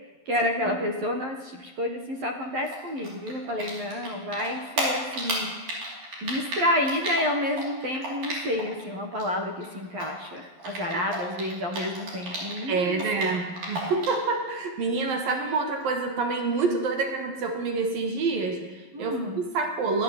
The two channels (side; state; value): left; late; 11 ms